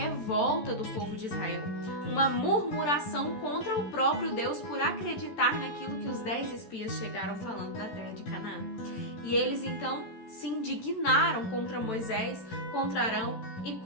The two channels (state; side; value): late; right; 14 ms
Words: do povo de Israel, uma murmuração contra o próprio Deus por acreditar naquilo que os 10 espias chegaram falando da terra de Canaã. E eles então se indignaram contra Moisés, contra Arão e